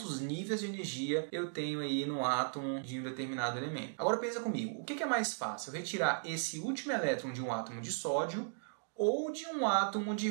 níveis de energia eu tenho aí no átomo de um determinado elemento. Agora pensa comigo, o que é mais fácil? Eu retirar esse último elétron de um átomo de sódio ou de um átomo de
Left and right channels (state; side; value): silent; left; digital silence